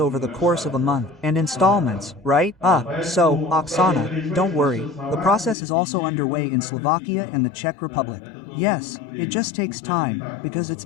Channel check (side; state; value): right; drops out; at 5.6 s